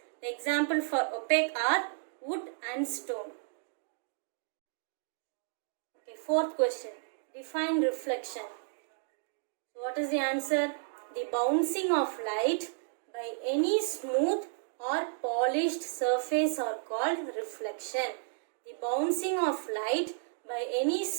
The example for opaque are wood and stone. Okay, fourth question. Define reflection. So what is the answer? The bouncing of light by any smooth or polished surface are called reflection. The bouncing of light by any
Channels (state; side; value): silent; left; digital silence